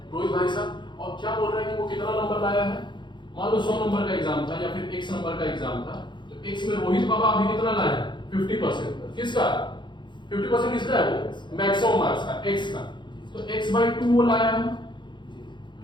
रोहित भाई साहब, और क्या बोल रहा है कि वो कितना नंबर लाया है, मान लो 100 नंबर का एग्जाम था या फिर x नंबर का एग्जाम था, तो x में रोहित बाबा अभी कितना लाए हैं, 50%, किसका 50% किसका है, वो मैक्सिमम मार्क्स का x का, तो x/2 वो लाया है,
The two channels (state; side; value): late; right; 0.23 ms